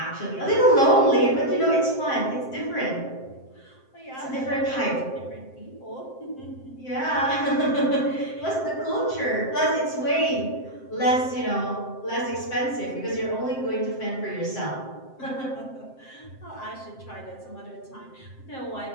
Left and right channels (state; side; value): late; right; 7.6 ms